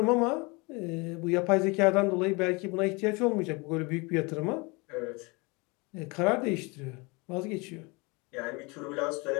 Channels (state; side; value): quieter; right; 27.5 dB